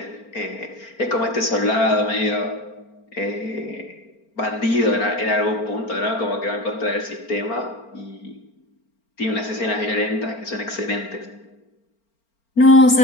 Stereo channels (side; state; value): right; late; 4.4 ms